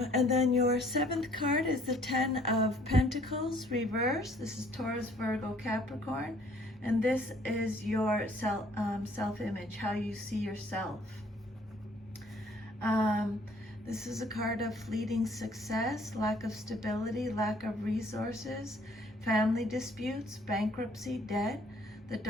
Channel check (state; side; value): normal; both; correlation 0.60